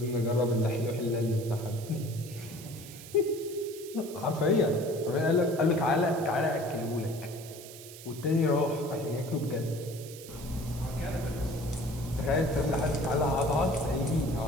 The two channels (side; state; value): right; noise; hiss, 15 dB below the sound